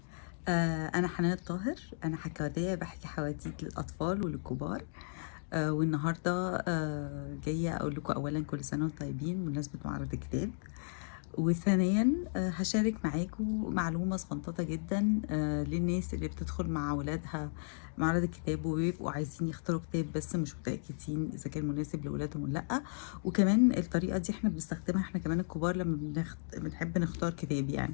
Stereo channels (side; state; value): right; silent; digital silence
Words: أنا حنان الطاهر. أنا حكواتية بحكي حواديت للأطفال وللكبار. والنهاردة جاية أقول لكم أولا كل سنة وانتم طيبين بمناسبة معرض الكتاب. وثانيا هشارك معاكم معلومة صغنططة جدا للناس اللي بتدخل مع ولادها معرض الكتاب وبيبقوا عايزين يختاروا كتاب بس مش متأكدين إذا كان مناسب لولادهم ولا لأ. وكمان الطريقة دي احنا بنستخدمها احنا كمان الكبار لما بنحب نختار كتاب يعني.